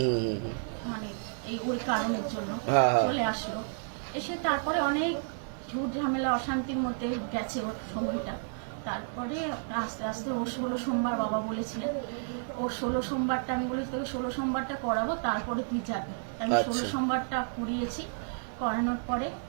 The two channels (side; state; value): left; silent; digital silence